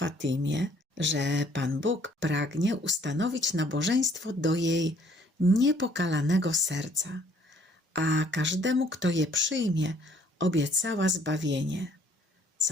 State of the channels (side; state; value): both; normal; correlation 0.61